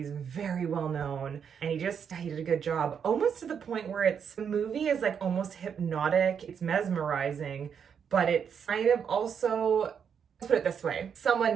very well known and he did a good job. Almost to the point where the movie is like almost hypnotic. It's mesmerizing, but it's kind of also, let's put it this way.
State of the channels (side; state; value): left; quieter; 7.4 dB